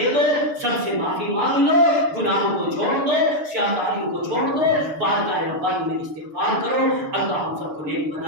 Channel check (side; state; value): left; late; 6.7 ms